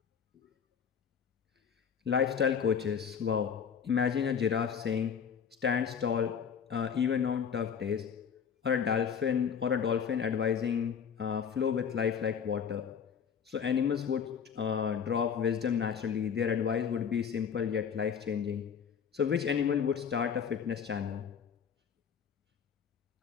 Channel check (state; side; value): quieter; right; 7.2 dB